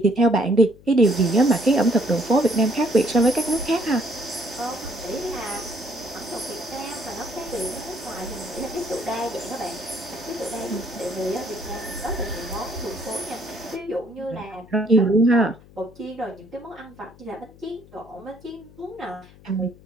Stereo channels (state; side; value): noise; left; hum, 23 dB below the sound